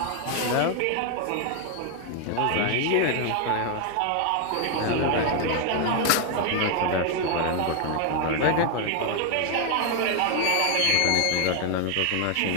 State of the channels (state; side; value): different; both; correlation 0.01